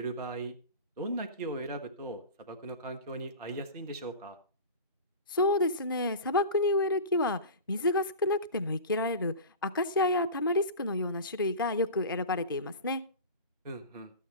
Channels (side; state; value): both; inverted; correlation -0.32